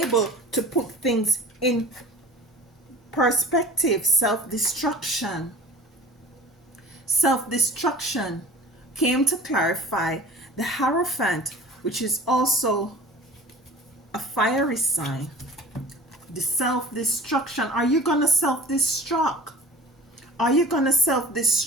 to put things in perspective. Self-destruction came to clarify the Hierophant, which is also a fiery sign. The self-destruction. Are you gonna self-destruct? Are you gonna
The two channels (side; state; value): both; normal; correlation 0.41